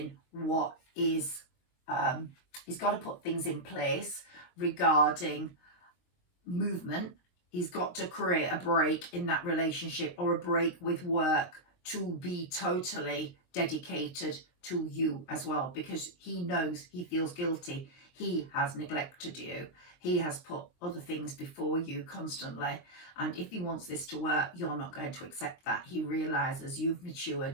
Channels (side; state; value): right; late; 22 ms